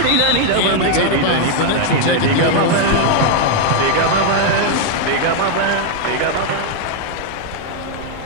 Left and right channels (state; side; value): different; both; correlation 0.00